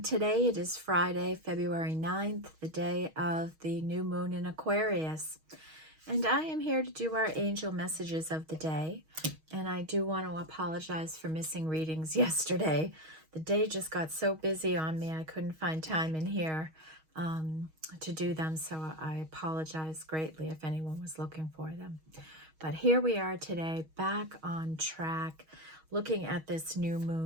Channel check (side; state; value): left; late; 6.3 ms